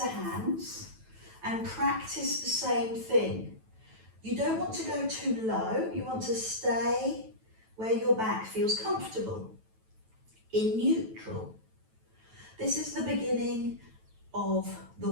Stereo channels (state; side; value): late; left; 9.1 ms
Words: hands and practice the same thing. You don't want to go too low. You want to stay where your back feels comfortable, in neutral. This is the beginning of the